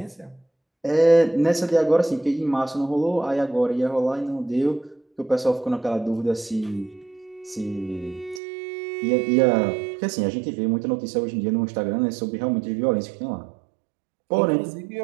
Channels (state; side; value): drops out; left; at 8.4 s